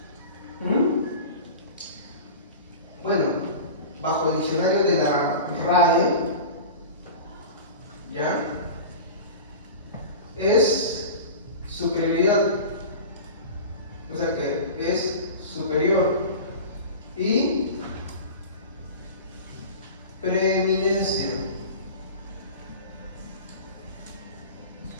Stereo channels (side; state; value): both; inverted; correlation -0.33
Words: Bueno, bajo el diccionario de la RAE, ¿ya? Es superioridad. O sea que es superior. Y preeminencia.